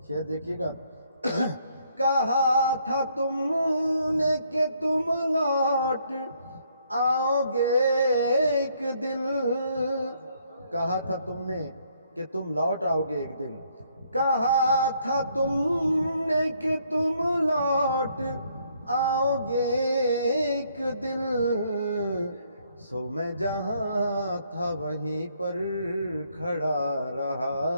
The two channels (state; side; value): inverted; both; correlation -0.69